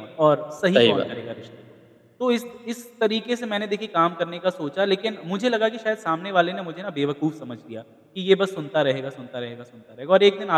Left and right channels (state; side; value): identical; both; correlation 1.00